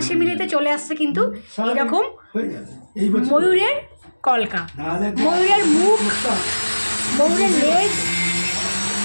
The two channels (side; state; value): both; inverted; correlation -1.00